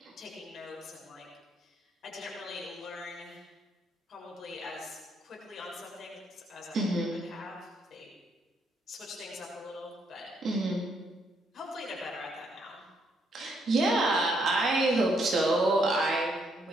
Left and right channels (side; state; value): both; normal; correlation 0.73